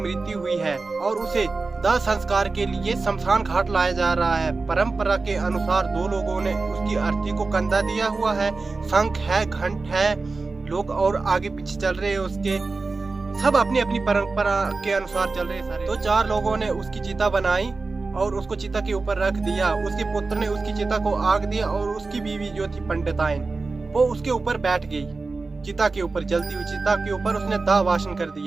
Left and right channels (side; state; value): left; quieter; 3.9 dB